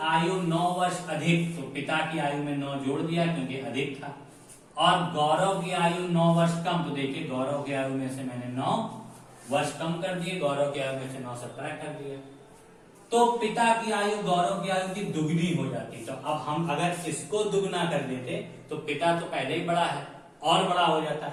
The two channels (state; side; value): identical; both; correlation 1.00